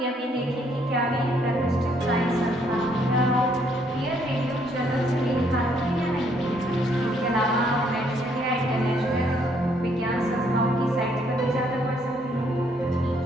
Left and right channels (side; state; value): both; normal; correlation 0.68